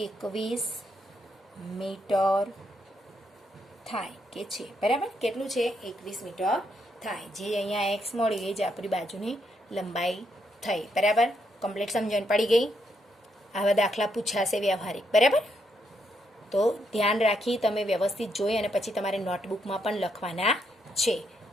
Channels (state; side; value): normal; both; correlation 0.77